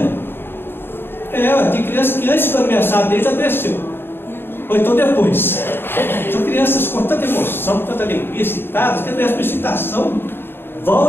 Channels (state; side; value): late; right; 0.10 ms